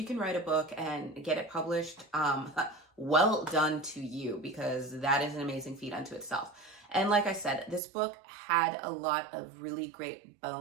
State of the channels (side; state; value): left; drops out; at 7.8 s